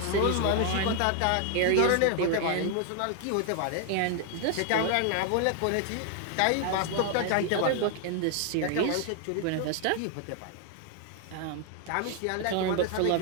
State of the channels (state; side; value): different; both; correlation 0.00